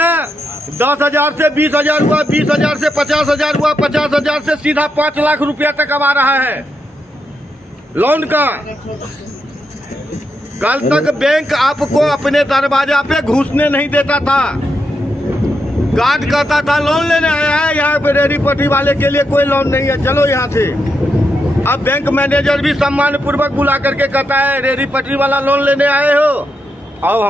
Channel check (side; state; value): both; normal; correlation 0.83